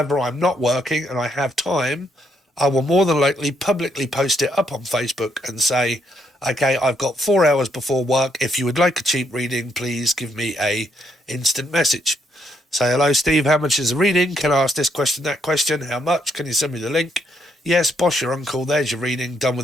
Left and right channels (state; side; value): normal; both; correlation 0.74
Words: I'm not working and I have time, I will more than likely publicly post it up on Facebook and say, okay, I've got 4 hours before work. If you would like a cheap reading, please give me a instant message. Say, hello, Steve, how much is a reading? Can I ask this question, that question? How much? Can you send me the link? Yes, boss, your uncle, there's your reading, done